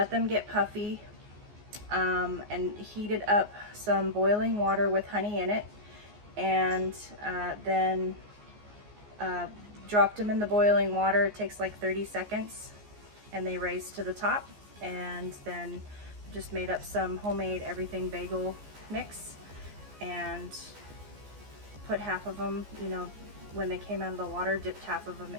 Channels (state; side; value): late; left; 14 ms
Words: them get puffy, and heated up some boiling water with honey in it, and then dropped them in the boiling water. It takes like 30 seconds and they raise to the top, and then just made up some homemade everything bagel mix and put half of them, when they came out of the water, dipped half of them